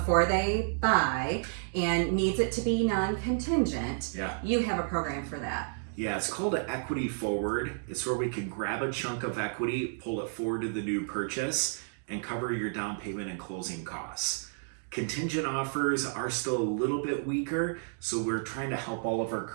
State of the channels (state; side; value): silent; left; digital silence